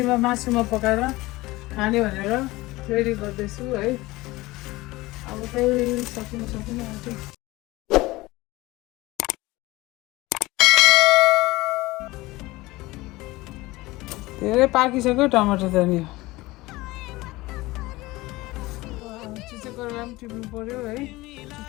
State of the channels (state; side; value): quieter; right; 20.1 dB